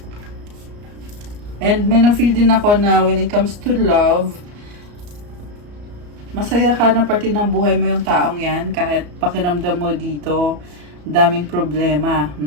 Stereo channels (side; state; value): left; late; 34 ms